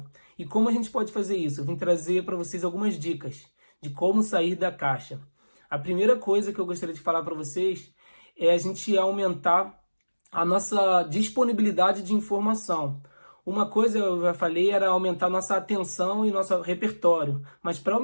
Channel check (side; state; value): both; inverted; correlation -1.00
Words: E como a gente pode fazer isso? Eu vim trazer para vocês algumas dicas de como sair da caixa. A primeira coisa que eu gostaria de falar para vocês é a gente aumentar a nossa disponibilidade de informação. Uma coisa eu já falei era aumentar nossa atenção e nosso repertório. Mas para